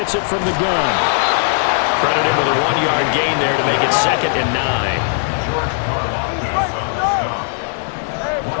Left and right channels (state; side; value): silent; right; 68 dB below the other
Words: it from the gun. Credit him with a 1-yard gain there to make it 2nd and 9.